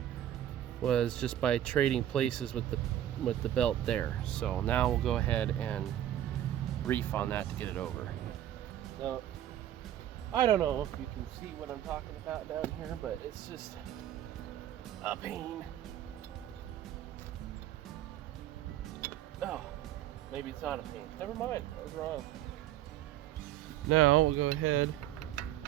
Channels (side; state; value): left; quieter; 11.9 dB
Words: was just by trading places with the belt there. So now we'll go ahead and reef on that to get it over. Now, I don't know if you can see what I'm talking about down here, but it's just a pain. Oh, maybe it's not a pain. Never mind, I was wrong. Now we'll go ahead